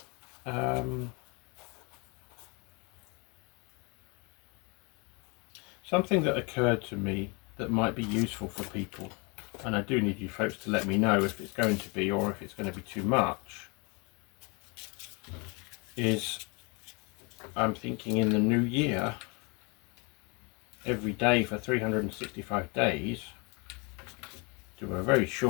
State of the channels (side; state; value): right; quieter; 30.7 dB